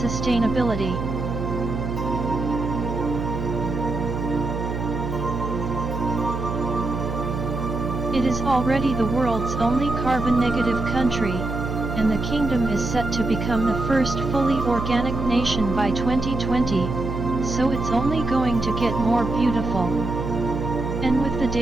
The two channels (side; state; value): right; noise; hum, 4 dB below the sound